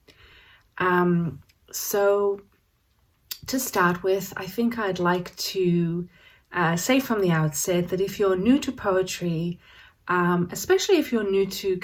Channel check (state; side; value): identical; both; correlation 1.00